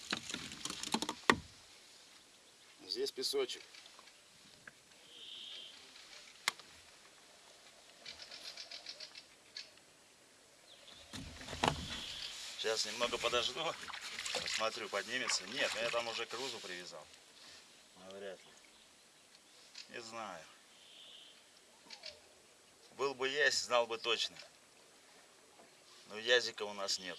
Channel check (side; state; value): both; identical; correlation 1.00